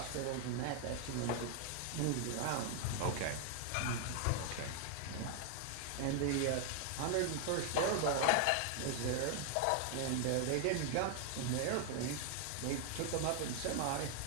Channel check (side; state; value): both; different; correlation 0.00